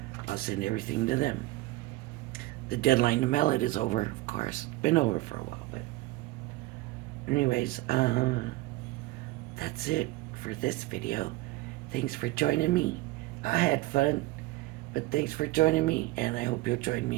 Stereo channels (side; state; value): left; quieter; 19.1 dB